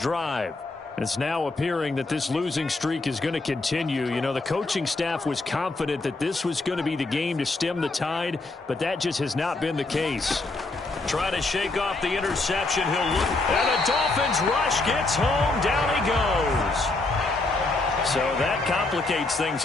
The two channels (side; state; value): right; quieter; 3.2 dB